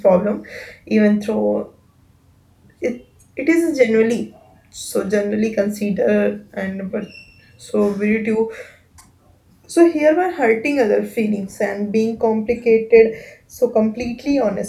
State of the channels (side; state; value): both; identical; correlation 1.00